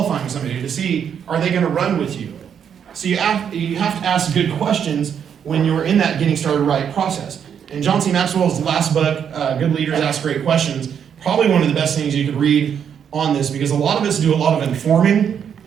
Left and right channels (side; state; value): left; quieter; 8.0 dB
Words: somebody to see, are they going to run with you? So you have to ask good questions when you're in that getting started right process. And John C. Maxwell's last book, Good Leaders Ask Great Questions, probably one of the best things you could read on this, because a lot of us do a lot of informing.